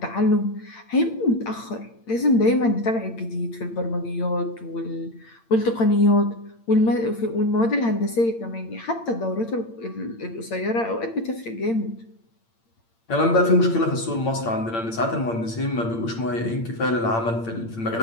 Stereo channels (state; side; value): late; right; 8.8 ms